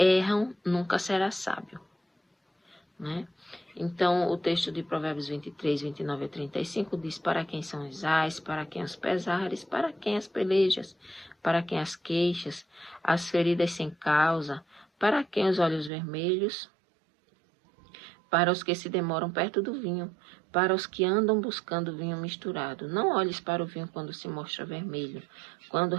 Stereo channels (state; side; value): drops out; left; at 15.9 s